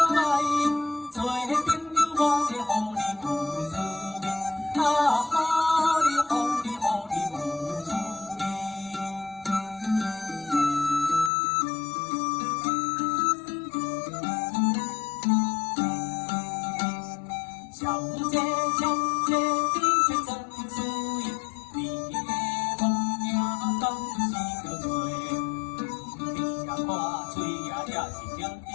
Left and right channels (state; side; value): drops out; right; at 11.3 s